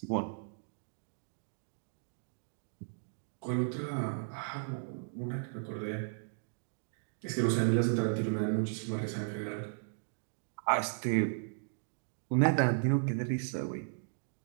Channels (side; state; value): left; silent; digital silence